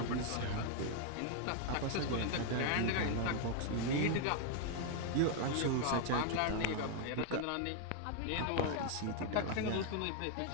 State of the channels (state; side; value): different; both; correlation 0.00